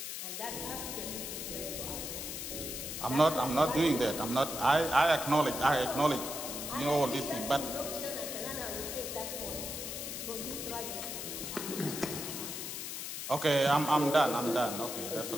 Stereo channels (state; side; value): noise; left; hiss, 6 dB below the sound